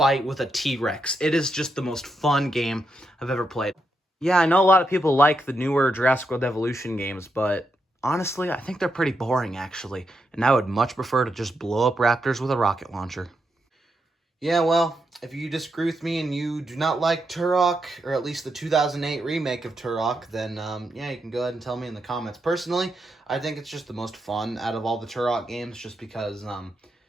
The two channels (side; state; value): both; normal; correlation 0.83